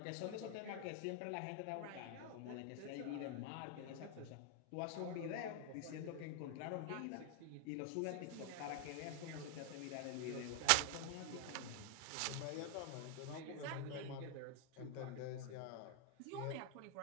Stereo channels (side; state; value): both; different; correlation 0.00